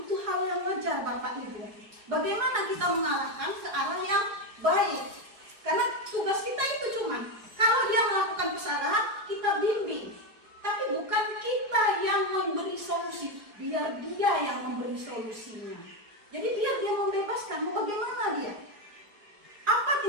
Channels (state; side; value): late; left; 4.7 ms